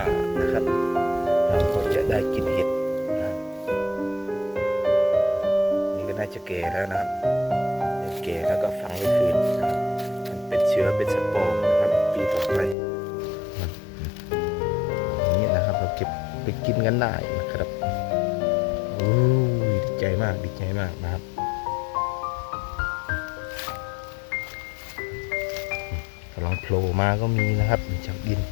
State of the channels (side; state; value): right; drops out; at 12.8 s